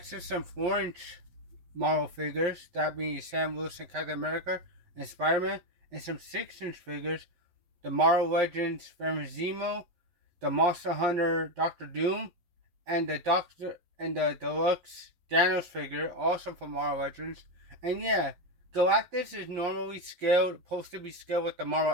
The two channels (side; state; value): left; late; 11 ms